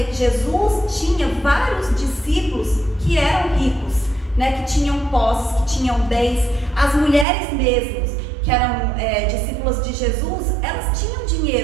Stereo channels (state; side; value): drops out; left; at 7.2 s